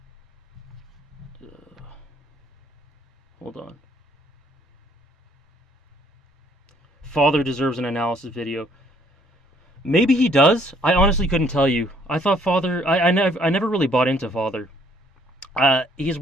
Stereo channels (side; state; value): both; normal; correlation 0.63